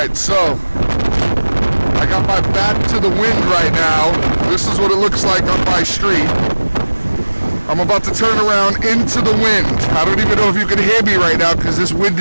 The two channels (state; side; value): inverted; both; correlation -1.00